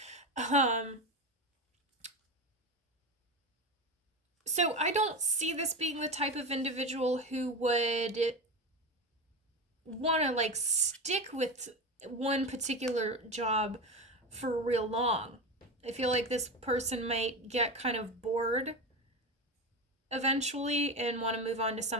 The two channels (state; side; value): normal; both; correlation 0.20